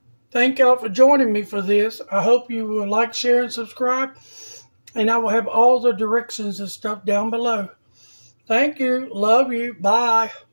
Thank y'all for joining me for this. I hope you will like, share, and subscribe. And I will have all the directions and stuff down below. Thank you. Love you. Bye.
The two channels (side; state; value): both; inverted; correlation -1.00